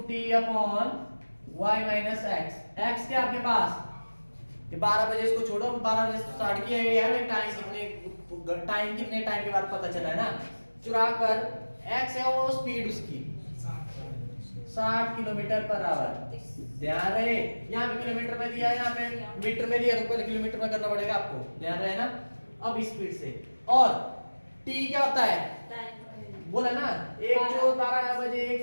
t upon y minus x, x क्या आपके पास, ये 12 बजे इसको छोड़ो, 12 बजे स्टार्ट किया है, टाइम कितने टाइम के बाद पता चला है ना, चुरा कर, x है वो स्पीड उसकी 60 किलोमीटर पर आवर, ध्यान रहे, यहाँ पे किलोमीटर में दिया है, यहाँ पे मीटर में दिया, तो पहले किलोमीटर में करना पड़ेगा आपको, ध्यान रहे ना। अब स्पीड से, और t क्या होता है, बोला ना, एक चोर 12 बजे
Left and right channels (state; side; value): inverted; both; correlation -1.00